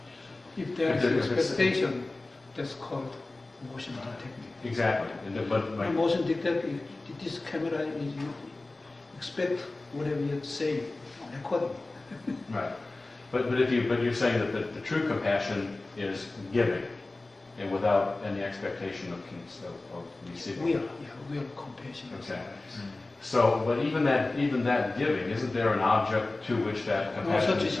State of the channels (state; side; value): quieter; right; 3.1 dB